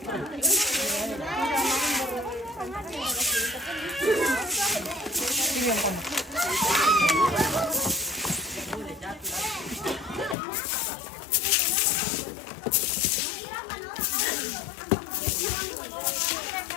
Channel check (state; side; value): drops out; right; at 10.4 s